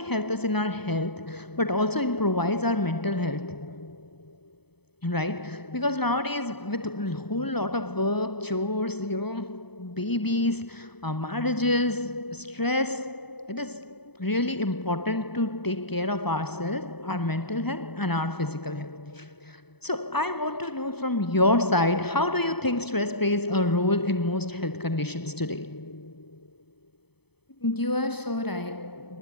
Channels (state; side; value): late; right; 0.98 ms